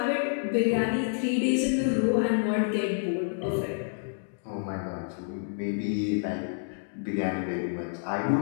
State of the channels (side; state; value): right; silent; 59 dB below the other